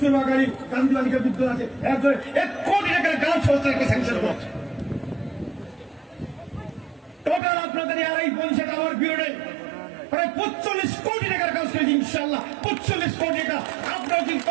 গান্ধী বালিকা বিদ্যালয় আছে, 1 কোটি টাকার গার্লস হোস্টেলকে স্যাংশন করেছে। টোটাল আপনাদের 2.5 পঞ্চায়েত আমার বিরোধে প্রায় 45 কোটি টাকার কাজ করেছি ইনশাআল্লাহ। 45 কোটি টাকা। আপনারা যদি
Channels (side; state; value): left; drops out; at 7.4 s